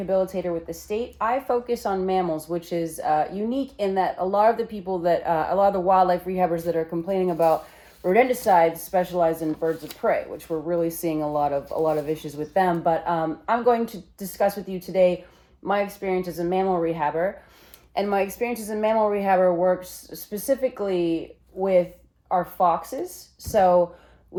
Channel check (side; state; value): both; identical; correlation 1.00